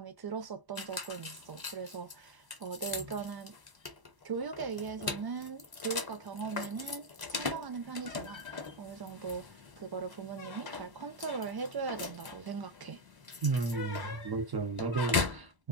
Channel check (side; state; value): left; late; 1.0 ms